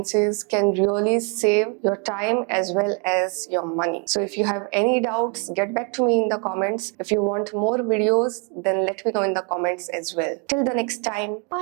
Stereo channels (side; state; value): left; quieter; 36.2 dB